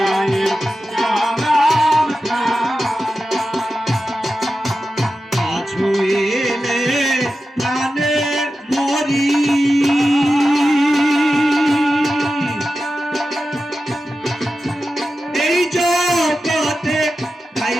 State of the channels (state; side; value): normal; both; correlation 0.92